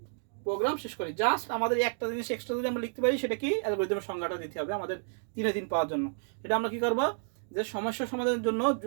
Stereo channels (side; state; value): left; silent; digital silence